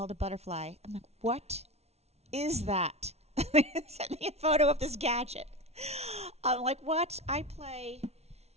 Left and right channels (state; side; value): late; left; 0.31 ms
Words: a butterfly, I'm like, what is that? They sent me a photo of this gadget. I'm like, what? I play